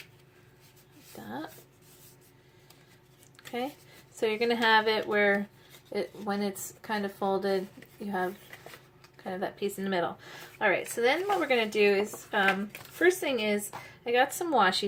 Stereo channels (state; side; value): identical; both; correlation 1.00